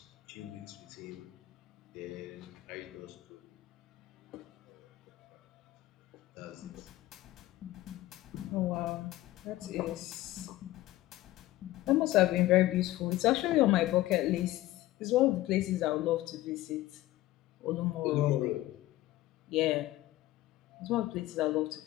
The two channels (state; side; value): quieter; right; 16.4 dB